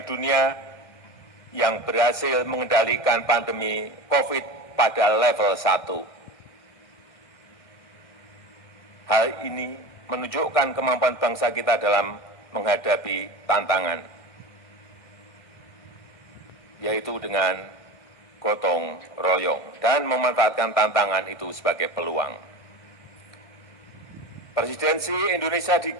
dunia yang berhasil mengendalikan pandemi COVID pada level 1. Hal ini menunjukkan kemampuan bangsa kita dalam menghadapi tantangan, yaitu dengan gotong royong dan memanfaatkan tantangan itu sebagai peluang. Presidensi Indonesia di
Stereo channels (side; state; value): right; late; 1.7 ms